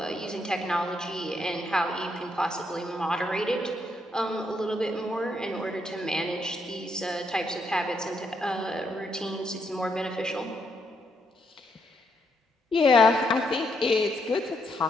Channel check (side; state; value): both; normal; correlation 0.76